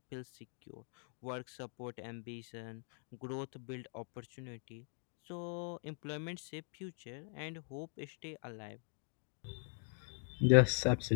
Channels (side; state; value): right; silent; 50 dB below the other